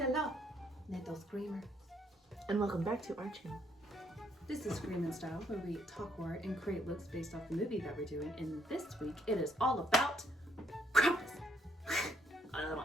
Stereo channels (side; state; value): both; normal; correlation 0.70